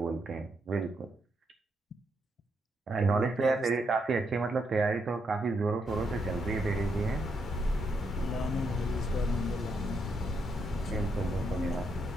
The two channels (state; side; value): normal; both; correlation 0.79